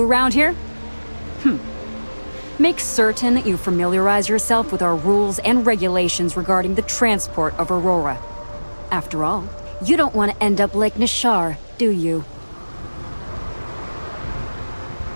around here? Make certain that you familiarize yourself with our rules and regulations regarding the transport of Aurora. After all, you don't want to end up like Nishar, do you?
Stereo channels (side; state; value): both; inverted; correlation -1.00